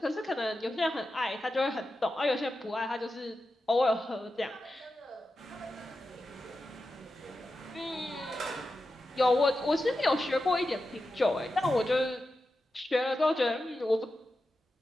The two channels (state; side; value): normal; both; correlation 0.91